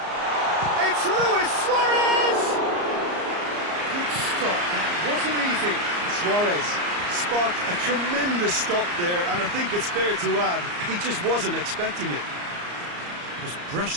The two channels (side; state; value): left; late; 34 ms